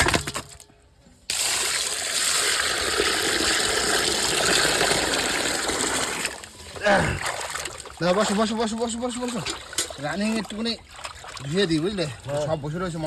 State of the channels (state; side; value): identical; both; correlation 1.00